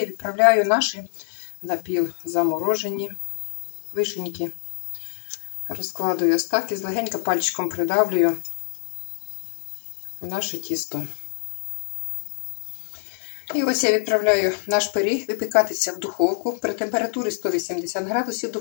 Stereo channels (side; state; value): right; silent; 61 dB below the other